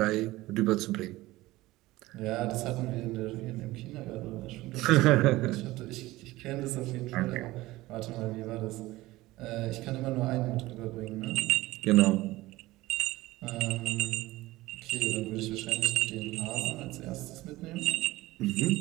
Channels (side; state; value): left; quieter; 18.4 dB